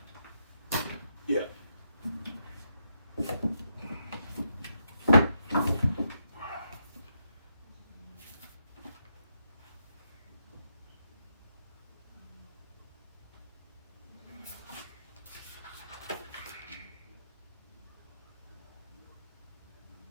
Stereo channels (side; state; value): both; inverted; correlation -0.81